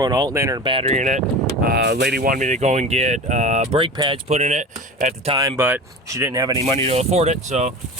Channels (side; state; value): both; normal; correlation 0.32